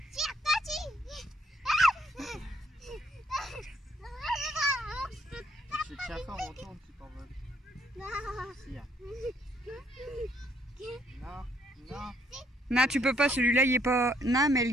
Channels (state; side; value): normal; both; correlation 0.69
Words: Tire, toi, je te tiens fort, on tourne, tu t'envoles. Non. Si, hein. Non, non. Non, tu peux pas, celui-là, il est pas... Non, mais